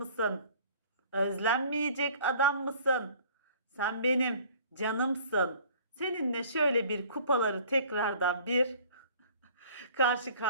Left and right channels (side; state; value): both; inverted; correlation -0.51